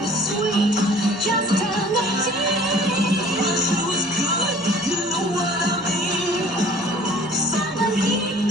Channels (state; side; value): normal; both; correlation 0.50